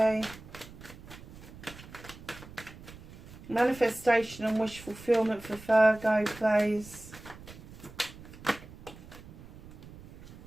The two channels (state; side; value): noise; right; rumble, 17 dB below the sound